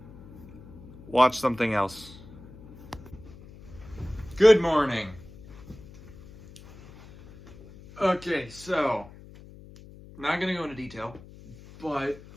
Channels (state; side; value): noise; left; hum, 19 dB below the sound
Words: watch something else. Good morning. Okay, so, I'm not gonna go into detail, but